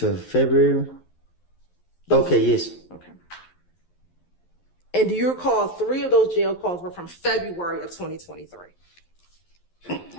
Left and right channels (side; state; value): right; late; 11 ms